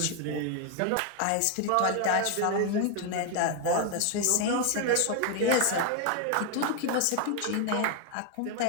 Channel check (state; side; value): different; both; correlation 0.01